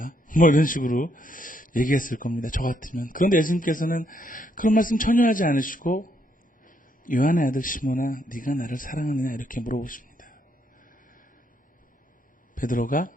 뭐 이런 식으로 얘기했을 겁니다. 저 같으면. 그런데 예수님께서는 그런 말씀 전혀 하지 않으시고 요한의 아들 시몬아, 네가 나를 사랑하느냐? 이렇게 물어보십니다. 베드로가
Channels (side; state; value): both; normal; correlation 0.74